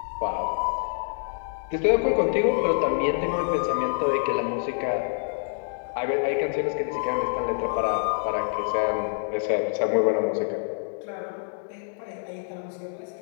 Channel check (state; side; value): silent; right; digital silence